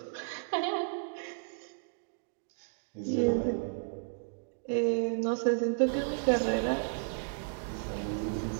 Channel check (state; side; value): silent; left; digital silence